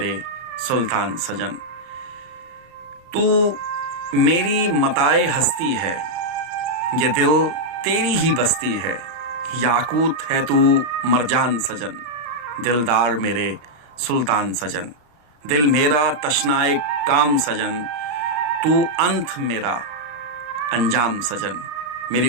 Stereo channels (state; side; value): late; left; 33 ms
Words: سلطان سجن۔ تو میری متاع ہستی ہے، یہ دل تیری ہی بستی ہے، یاقوت ہے تو مرجان سجن، دلدار میرے سلطان سجن۔ دل میرا تشنائے کام سجن، تو انت میرا انجام سجن، میری